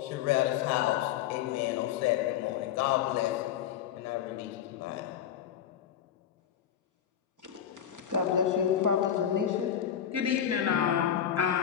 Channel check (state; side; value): quieter; right; 9.5 dB